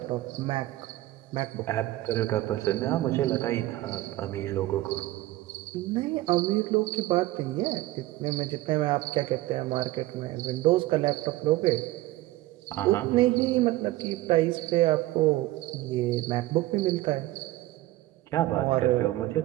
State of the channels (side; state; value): left; quieter; 17.1 dB